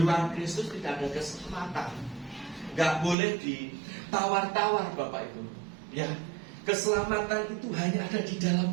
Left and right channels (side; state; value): left; drops out; at 3.2 s